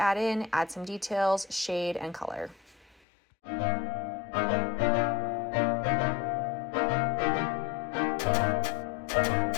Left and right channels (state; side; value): drops out; right; at 3.0 s